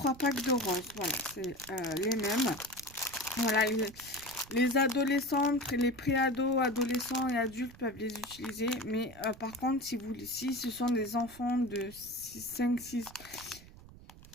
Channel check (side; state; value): right; noise; rumble, 19 dB below the sound